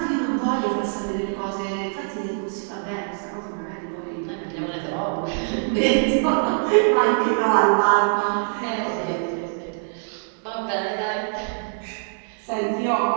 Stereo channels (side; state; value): left; silent; 63 dB below the other